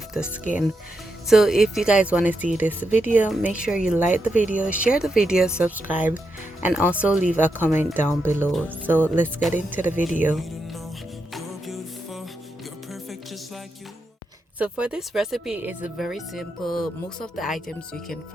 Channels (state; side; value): normal; both; correlation 0.84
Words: the skin. So if you guys want to see this video, make sure you like the video, share the video, subscribe, and also leave a comment down below. So let's get into the video. So for this recipe, it's very simple. Most of the items you can